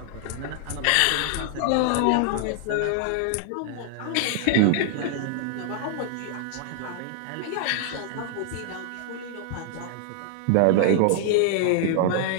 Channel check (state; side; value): different; both; correlation 0.00